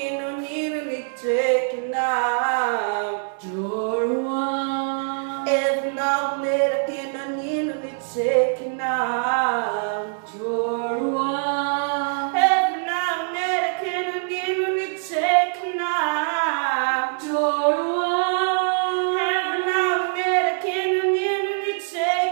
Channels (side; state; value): left; silent; digital silence